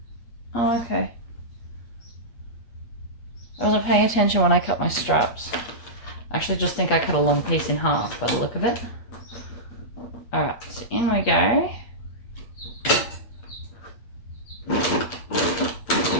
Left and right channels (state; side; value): late; right; 8.4 ms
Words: Oh, okay. I wasn't paying attention when I cut my straps. I actually just think I cut a long piece in half by the look of it. Alright, so in we go.